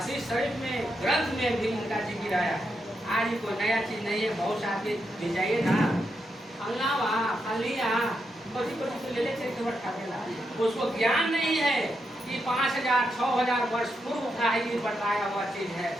शरीफ में, ग्रंथ में भी इनका जिक्र आया है। आज कोई नया चीज नहीं है। बहुत सारे ले जाइए ना, फलना वहाँ फलिया कोटी ले लेते, उसको ज्ञान नहीं है कि 5000 6000 वर्ष पूर्व का ही बताया हुआ चीज है,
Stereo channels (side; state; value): both; normal; correlation 0.83